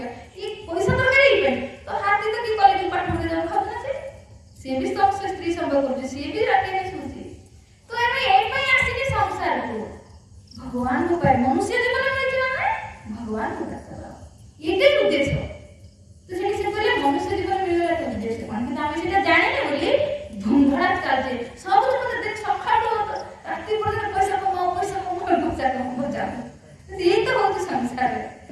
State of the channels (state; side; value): identical; both; correlation 1.00